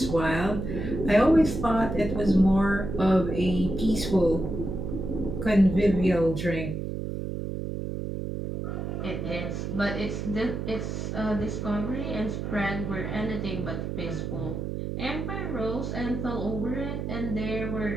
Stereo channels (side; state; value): right; noise; hum, 4 dB below the sound